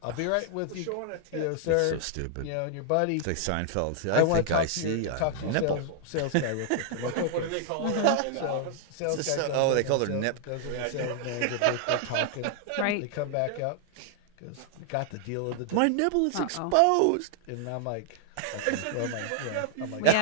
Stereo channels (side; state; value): both; different; correlation -0.01